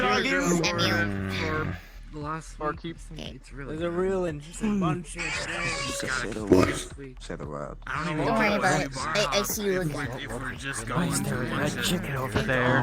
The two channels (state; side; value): identical; both; correlation 1.00